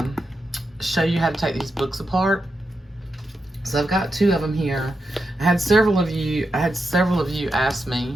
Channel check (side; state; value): both; normal; correlation 0.87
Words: show you how to take these books apart. So I've got two of them here. I had several of you ask